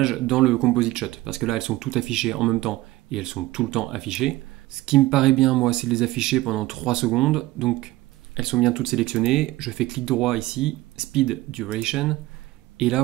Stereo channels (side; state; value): left; quieter; 17.9 dB